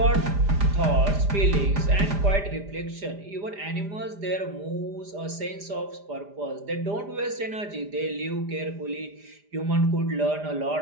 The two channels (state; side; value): late; left; 4.9 ms